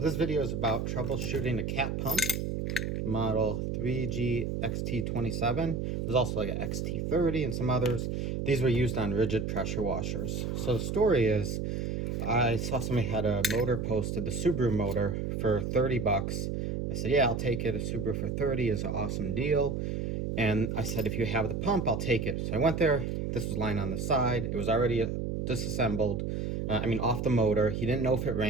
this video is about troubleshooting a cat pump, model 3GXT27. There's also like an XT30 and some others. These were used on Ridgid pressure washers. So the story is, I saw somebody had a motor posted, the Subaru motor, for 30 bucks. I said, yeah, I'll take it. A Subaru for 30 is an awesome deal. And I said, if you have the pump, I'll take it. So I went there. This was lying on the side. It was already disassembled. Off the motor. He didn't know if it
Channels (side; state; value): right; noise; hum, 2 dB below the sound